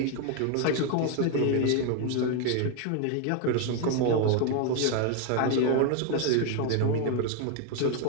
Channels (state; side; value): different; both; correlation 0.01